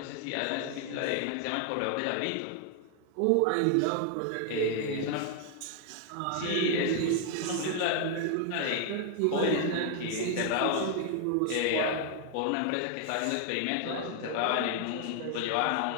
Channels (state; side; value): different; both; correlation 0.00